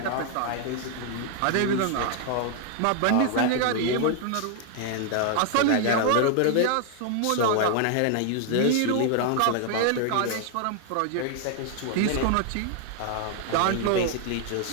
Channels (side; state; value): both; different; correlation 0.00